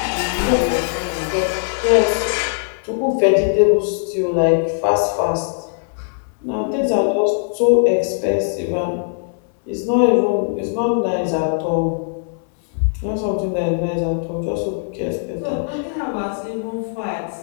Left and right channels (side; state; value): right; silent; digital silence